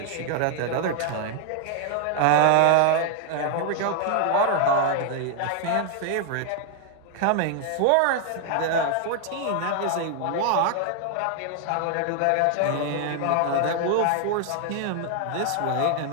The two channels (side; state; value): both; different; correlation 0.00